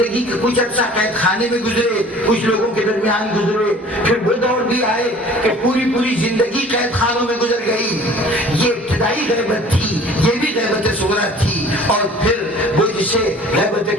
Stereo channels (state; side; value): normal; both; correlation 0.48